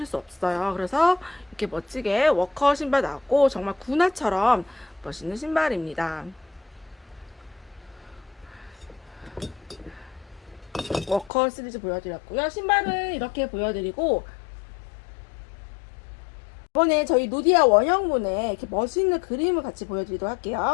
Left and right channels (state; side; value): drops out; right; at 11.3 s